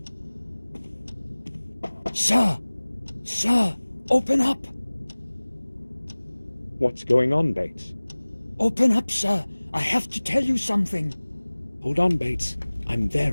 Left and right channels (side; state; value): both; inverted; correlation -1.00